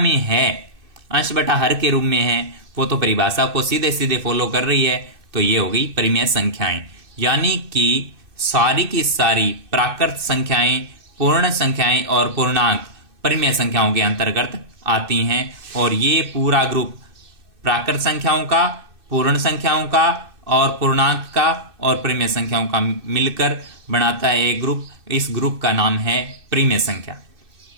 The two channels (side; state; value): left; late; 2.6 ms